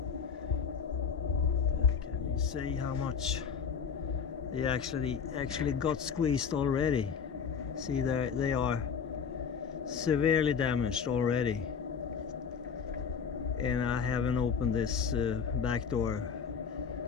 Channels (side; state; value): right; quieter; 6.5 dB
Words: can you see how much they actually got squeezed already? See, there they are severely damaged already. And I haven't opened this back door